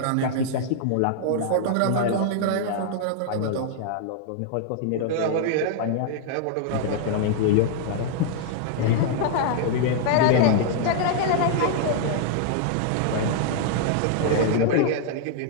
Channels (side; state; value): both; different; correlation -0.01